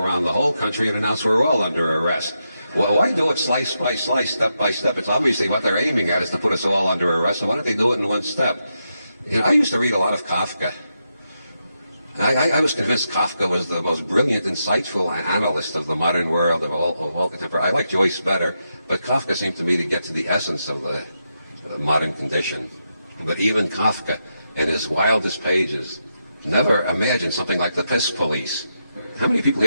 the whole country and announce we're all under arrest. Well, why do it slice by slice, step by step? It's obviously what they're aiming at is to put us all under arrest, so why don't they do it in one step? You know, I used to read a lot of Kafka. I was convinced Kafka was the most brilliant, insightful analyst of the modern world, of all contemporary. I like Joyce better, but Kafka seemed to me to get to the essence of the modern condition. But even Kafka, in his wildest pages, never imagined something like the piss police. How many people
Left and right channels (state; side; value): inverted; both; correlation -0.85